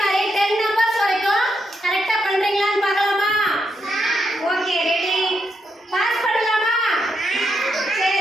10 நம்பர்ஸ் வரைக்கும் கரெக்டாக பண்ணுறீங்களான்னு பார்க்கலாமா? Okay, ready? பாஸ் பண்ணலாமா?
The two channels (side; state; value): both; normal; correlation 0.82